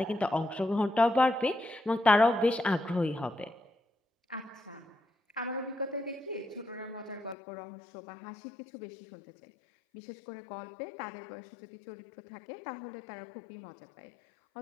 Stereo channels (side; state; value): right; drops out; at 7.4 s